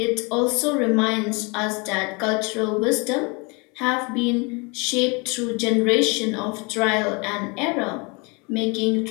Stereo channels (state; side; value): quieter; right; 30.0 dB